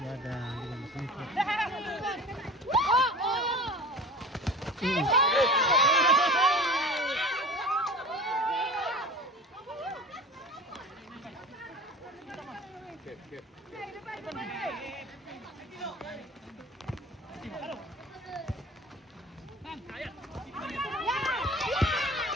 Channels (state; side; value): normal; both; correlation 0.37